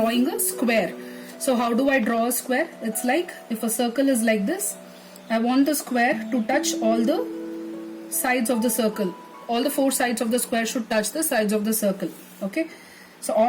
a square. So how do I draw a square? It's like if a circle is like this, I want the square to touch all the sides of the circle. All the 4 sides of the square should touch the sides of the circle. Okay, so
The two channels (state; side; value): identical; both; correlation 1.00